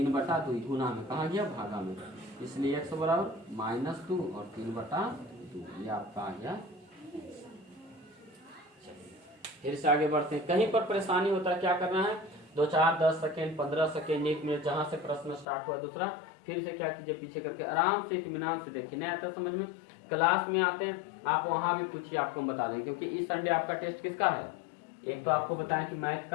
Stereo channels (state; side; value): drops out; right; at 15.5 s